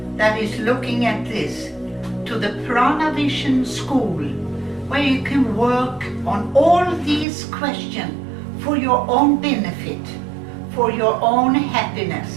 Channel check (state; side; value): drops out; left; at 7.2 s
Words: that is looking at this to the Prana Vision School, where you can work on all these questions for your own benefit, for your own